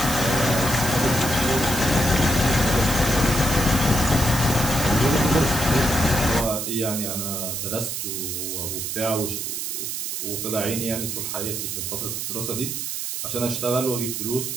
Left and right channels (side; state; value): right; noise; hiss, 3 dB below the sound